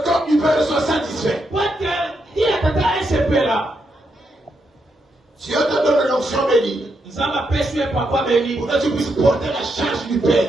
corps du Père soit satisfait. Dieu te donne l'onction bénie pour que tu puisses porter la charge du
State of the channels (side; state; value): both; normal; correlation 0.81